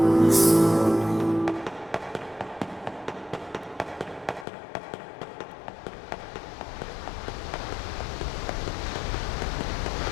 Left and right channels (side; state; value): right; drops out; at 4.5 s